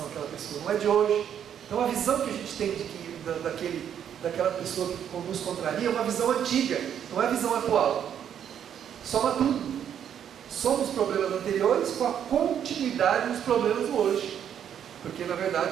àquela pessoa, não é de hoje. Então a visão que a gente tem daquela pessoa que nos contraria é uma visão antiga, não é a visão atual. Soma tudo. Soma os problemas anteriores com a continuidade dos problemas do hoje. Porque na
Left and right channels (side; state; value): left; quieter; 9.1 dB